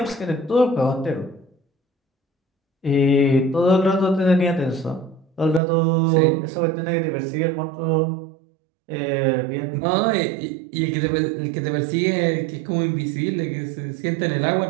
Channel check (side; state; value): left; drops out; at 5.6 s